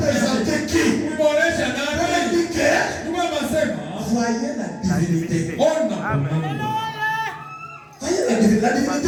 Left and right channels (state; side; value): identical; both; correlation 1.00